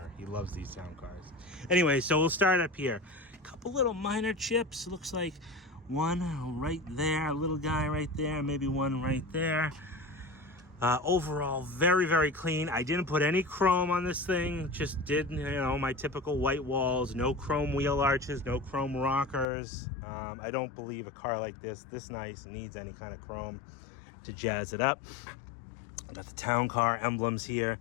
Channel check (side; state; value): right; drops out; at 19.5 s